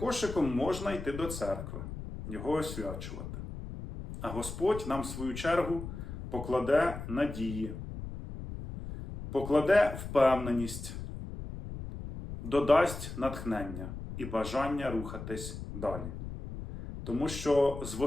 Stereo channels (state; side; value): noise; left; rumble, 9 dB below the sound